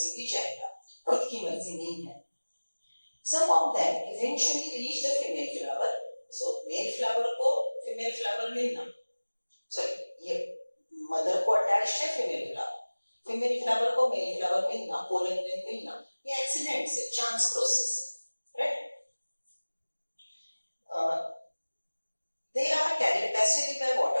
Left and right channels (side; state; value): both; inverted; correlation -1.00